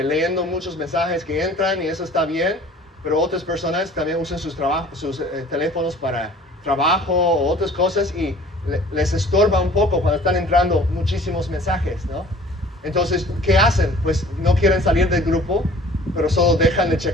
muchos mensajes que entran y eso está bien, pero otras personas también usan sus teléfonos para trabajo o otras cosas y les estorba un poco cuando están entrando muchísimos mensajes, ¿no? Entonces, ¿qué hacen? Pues no quieren salir del grupo, pero solo dejan de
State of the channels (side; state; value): both; normal; correlation 0.49